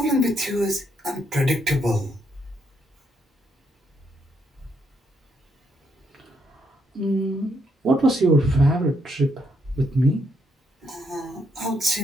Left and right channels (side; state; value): both; normal; correlation 0.75